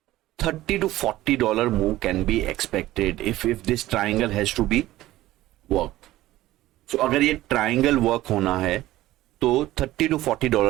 $30 to $40 move can be expected if this triangle has to be worked. So अगर ये triangle work होना है तो $30 to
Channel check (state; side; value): quieter; left; 15.9 dB